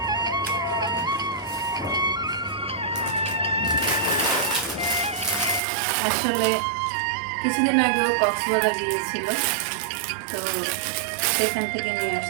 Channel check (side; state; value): left; drops out; at 5.6 s